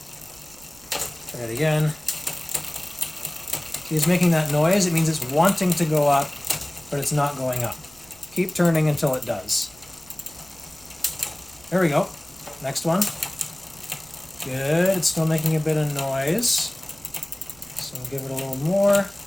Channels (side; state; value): right; noise; rumble, 26 dB below the sound